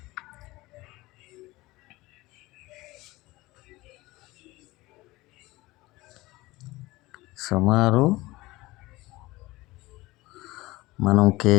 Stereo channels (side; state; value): right; quieter; 20.1 dB